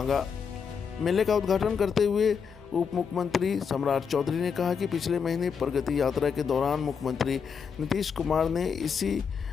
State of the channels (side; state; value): right; quieter; 6.4 dB